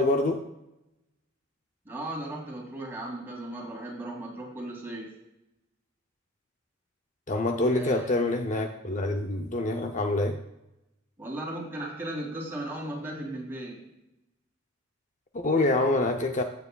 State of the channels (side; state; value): both; normal; correlation 0.38